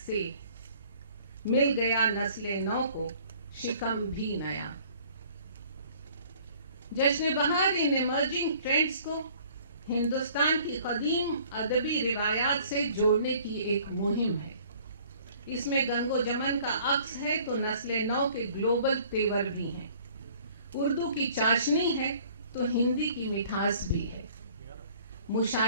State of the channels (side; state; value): both; inverted; correlation -0.54